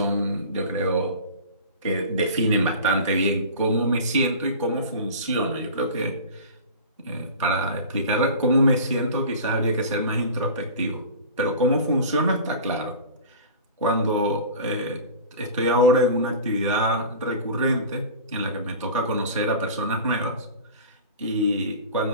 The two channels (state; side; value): inverted; both; correlation -0.36